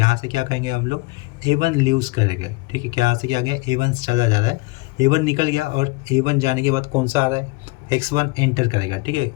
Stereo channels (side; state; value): right; quieter; 24.1 dB